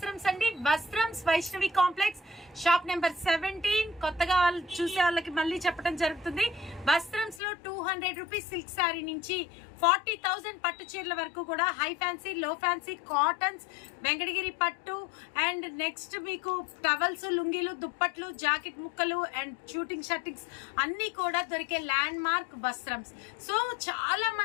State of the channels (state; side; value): drops out; right; at 7.4 s